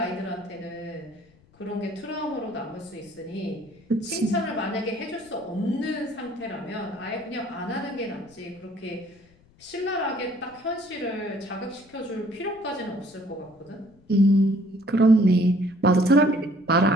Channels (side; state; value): left; noise; rumble, 29 dB below the sound